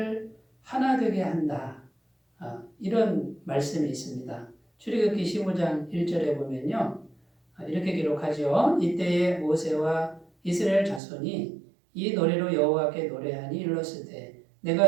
하나 되게 한다. 이런 말씀이 있습니다. 출애굽기 15장 1절에 보면요. 이렇게 기록하죠. 이때에 모세와 이스라엘 자손이 이 노래로 여호와께 노래하니 일렀으되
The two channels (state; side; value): drops out; left; at 11.0 s